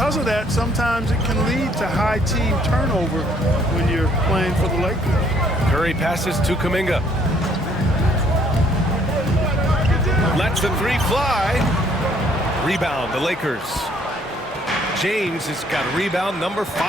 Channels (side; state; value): both; normal; correlation 0.64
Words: of that, sometimes it can lead to high team turnover when you're playing for the Lakers. Curry passes to Kuminga. Lets the 3 fly. Rebound, the Lakers. James has got rebound number